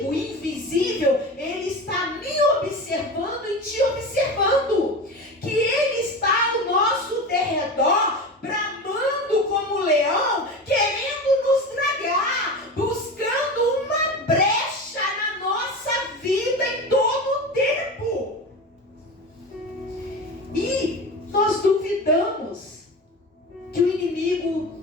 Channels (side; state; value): both; normal; correlation 0.28